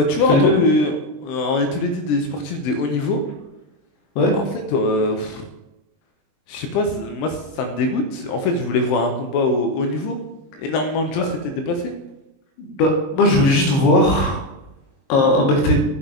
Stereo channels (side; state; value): right; late; 20 ms